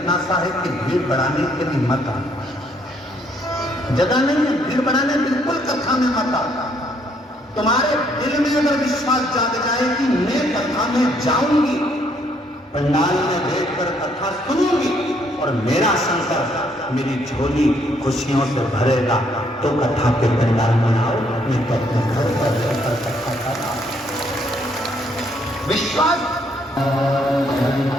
सा है कि भीड़ बढ़ाने के लिए मत आना। जगह नहीं है भीड़ बढ़ाने, बिल्कुल कथा में मत आना। तुम्हारे दिल में अगर विश्वास जाग जाए कि मैं कथा में जाऊंगी, पंडाल में बैठकर कथा सुनूंगी और मेरा शंकर मेरी झोली खुशियों से भरेगा, तो कथा के पंडाल में आओ। मैं तो अपने घर पर रहकर कथा कर रहा हूं। विश्वास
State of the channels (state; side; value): normal; both; correlation 0.69